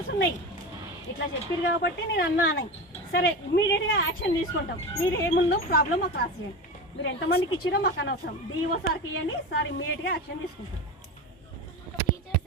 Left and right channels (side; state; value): both; normal; correlation 0.24